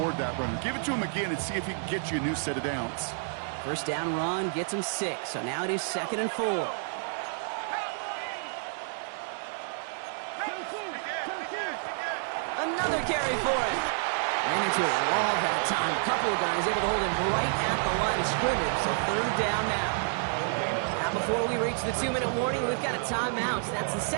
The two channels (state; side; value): silent; left; digital silence